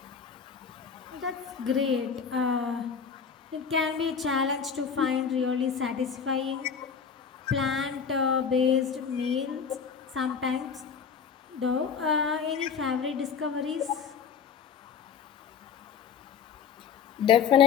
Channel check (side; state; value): right; quieter; 6.7 dB